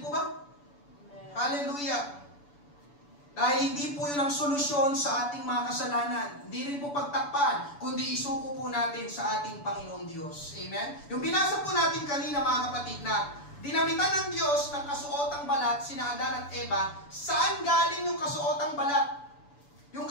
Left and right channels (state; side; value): late; right; 7.0 ms